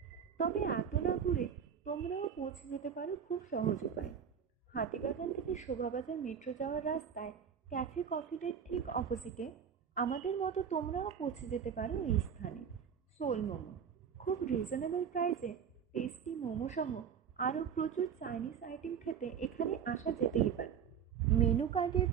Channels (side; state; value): left; quieter; 7.8 dB